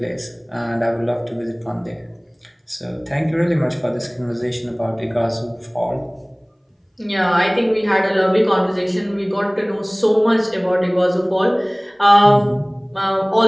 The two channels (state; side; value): identical; both; correlation 1.00